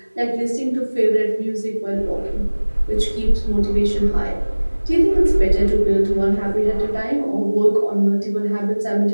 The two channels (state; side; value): inverted; both; correlation -1.00